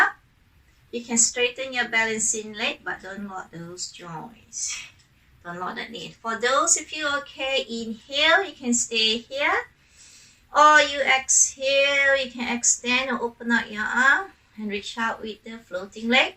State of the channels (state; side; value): identical; both; correlation 1.00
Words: you can straighten your balancing leg, but don't lock those joints. Don't lock that knee. For those of you okay, inhale, you can stay here. Or you exhale, you can extend or open out your arm and reach out with the floating